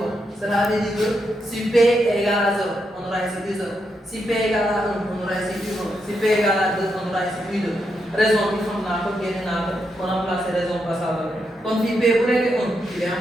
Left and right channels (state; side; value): normal; both; correlation 0.82